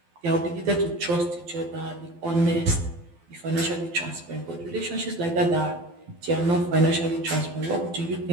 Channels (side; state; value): left; late; 12 ms